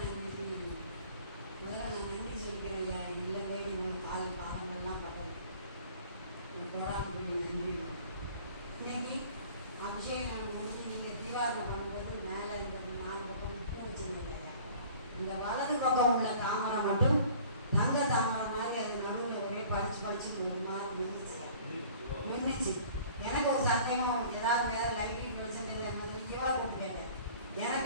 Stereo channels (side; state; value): both; inverted; correlation -0.49